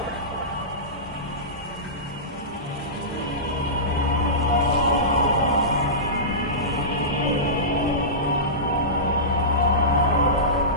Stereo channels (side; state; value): both; normal; correlation -0.20